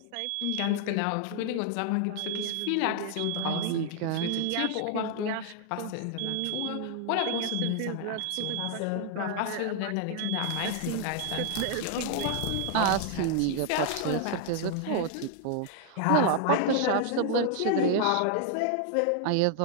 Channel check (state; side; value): different; both; correlation 0.00